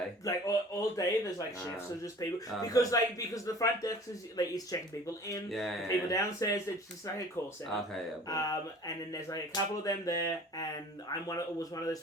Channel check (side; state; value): both; normal; correlation 0.46